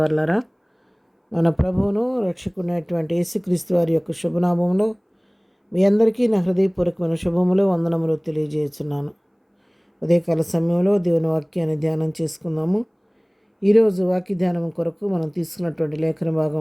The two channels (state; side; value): identical; both; correlation 1.00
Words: మన ప్రభువును రక్షకునేటువంటి యేసుక్రీస్తు వారి యొక్క శుభనామంలో మీ అందరికీ నా హృదయపూర్వకమైన శుభములు వందనములు తెలియజేస్తున్నాను. ఉదయకాల సమయంలో దేవుని వాక్యాన్ని ధ్యానం చేసుకుందాము. ఈరోజు వాక్య ధ్యానం కొరకు మనం తీసుకున్నటువంటి లేఖన